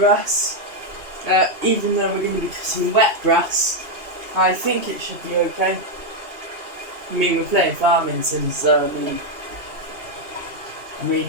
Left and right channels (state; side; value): late; left; 2.9 ms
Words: Even though we're going to be cutting wet grass, I think it should be okay. I mean, we're playing farming sim, so I mean